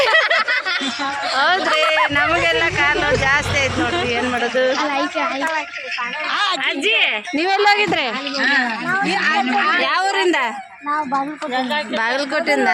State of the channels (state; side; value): identical; both; correlation 1.00